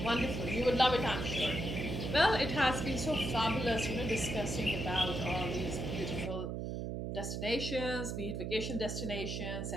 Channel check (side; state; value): right; noise; hum, 3 dB below the sound